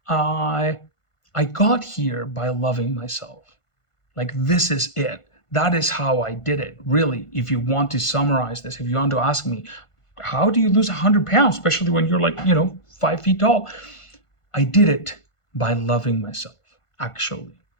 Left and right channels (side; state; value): right; late; 1.5 ms